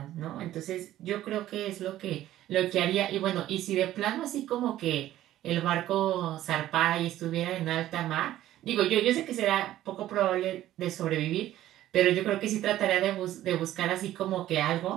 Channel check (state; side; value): quieter; left; 13.6 dB